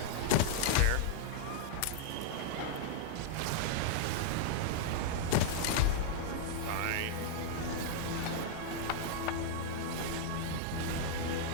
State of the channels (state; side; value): different; both; correlation 0.00